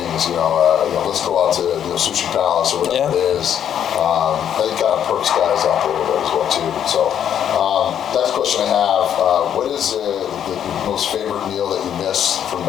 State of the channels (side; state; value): right; quieter; 9.4 dB